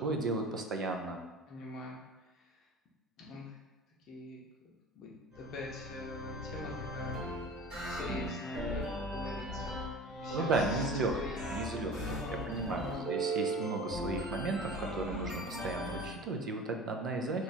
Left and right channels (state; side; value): normal; both; correlation 0.38